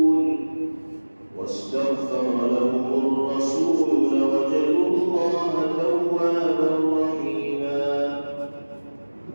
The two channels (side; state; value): both; inverted; correlation -1.00